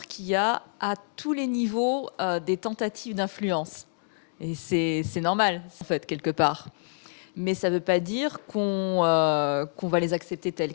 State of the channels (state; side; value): silent; right; digital silence